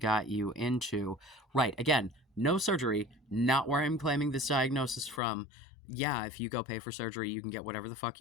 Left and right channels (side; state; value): right; drops out; at 5.2 s